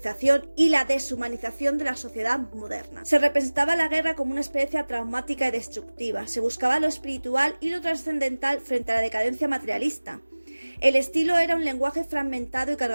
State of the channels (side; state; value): both; inverted; correlation -1.00